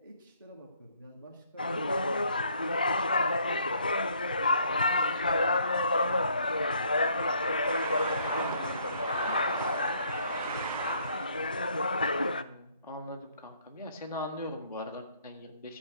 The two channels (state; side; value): inverted; both; correlation -0.64